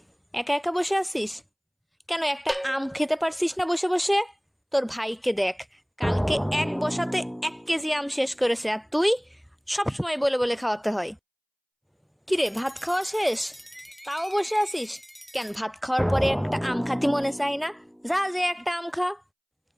একা একা বসে আছিস কেন? একটা আম খেতে পারছিস না বসে বসে? তোর ভাইকে দেখ, কালকে এক বসাতে 1 কেজি আম শেষ করেছে, আর তুই সব সময় বলে বলে খাওয়াতে হয়। কিরে, ভাত খাওয়া শেষ তাও বসে আছিস কেন? ভাত খাওয়ার পরে একটা আম খাতি মনে চাই না? যা, যে একটা আম খা।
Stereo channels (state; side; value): identical; both; correlation 1.00